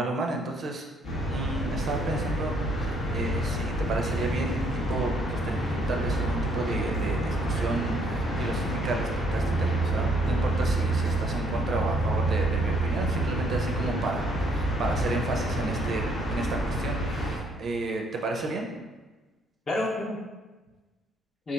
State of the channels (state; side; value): normal; both; correlation 0.67